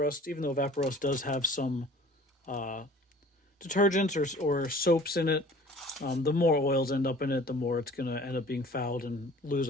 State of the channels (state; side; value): normal; both; correlation 0.47